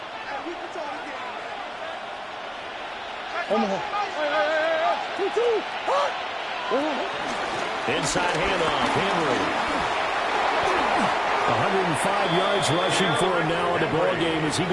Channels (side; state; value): both; identical; correlation 1.00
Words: Inside handoff, Henry. 105 yards rushing for him now in the ball game as he